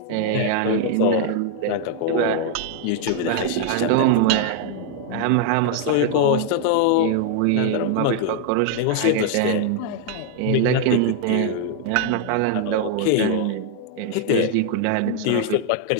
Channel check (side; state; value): both; different; correlation 0.00